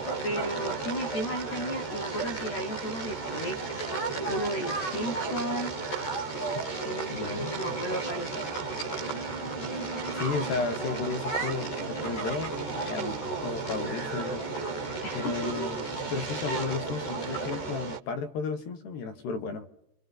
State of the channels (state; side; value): late; right; 13 ms